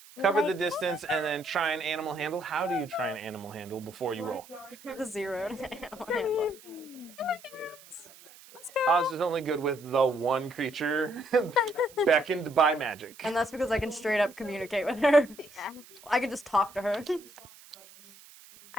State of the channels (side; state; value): right; noise; hiss, 22 dB below the sound